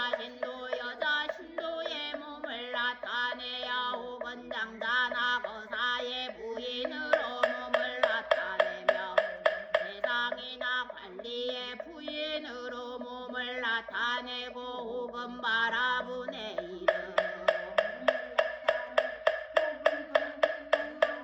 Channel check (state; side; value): identical; both; correlation 1.00